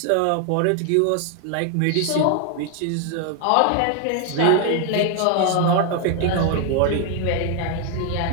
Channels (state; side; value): different; both; correlation 0.00